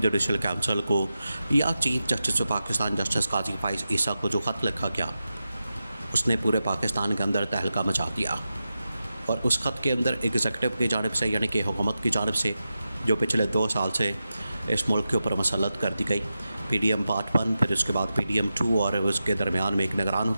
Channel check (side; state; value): both; inverted; correlation -0.91